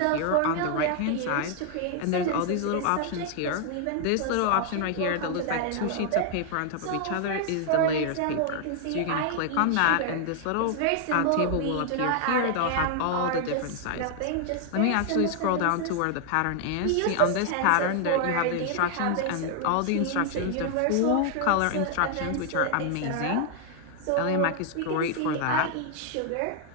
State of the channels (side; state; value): both; different; correlation 0.00